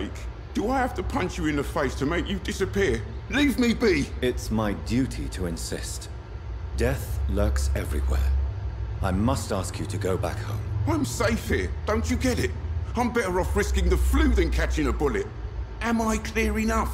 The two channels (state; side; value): identical; both; correlation 1.00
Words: do I have to punch you in the face to make you disappear? Leave me be. It's my duty to insist. Death lurks everywhere. I must ask you to go back home. I'm safe here. Don't you get it? I'm better off risking the flu than catching a bullet. Am I clear enough?